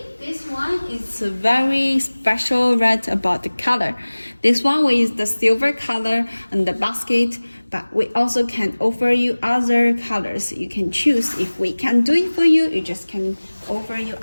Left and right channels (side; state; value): both; inverted; correlation -1.00